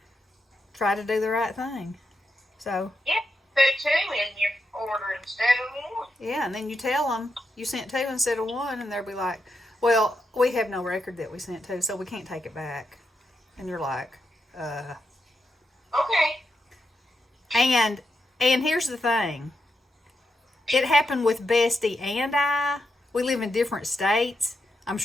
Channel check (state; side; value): normal; both; correlation 0.84